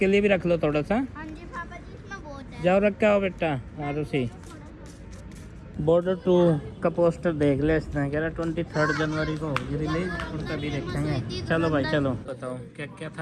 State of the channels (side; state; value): both; identical; correlation 1.00